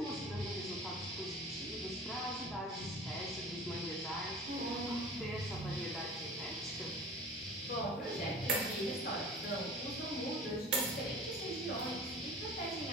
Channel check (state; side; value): normal; both; correlation 0.40